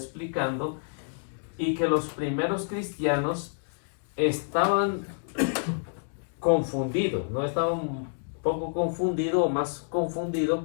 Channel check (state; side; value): silent; right; digital silence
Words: y que los primeros cristianos estaban confundidos, no estaban un poco confundidos o más confundidos,